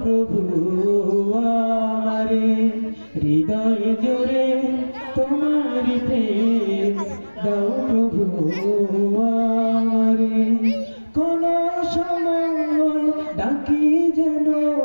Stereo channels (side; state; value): both; inverted; correlation -1.00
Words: প্রভু আমারে, হৃদয় জুড়ে তোমার প্রেম দাও প্রভু আমারে। কোন সময় ডাকি যেন,